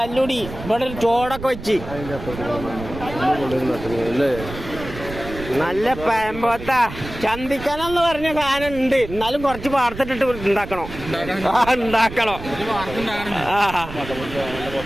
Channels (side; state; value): right; noise; rumble, 11 dB below the sound